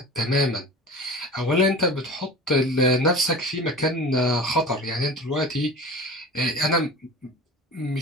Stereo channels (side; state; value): both; normal; correlation 0.36